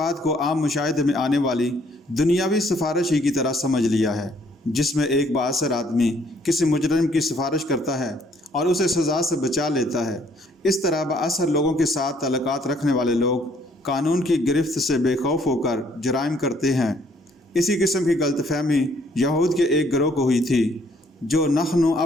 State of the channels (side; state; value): both; normal; correlation 0.64